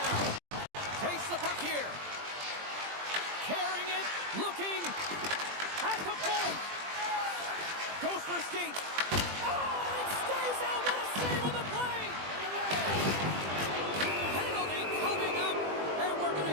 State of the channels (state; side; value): late; left; 20 ms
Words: Takes the puck here. Carrying it, looking at the point. Goes for a skate. Oh, it stays out. What a save on the play. Penalty coming up, and we're going